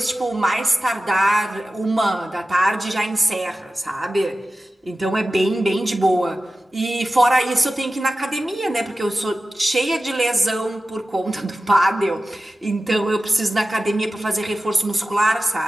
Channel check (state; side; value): normal; both; correlation 0.94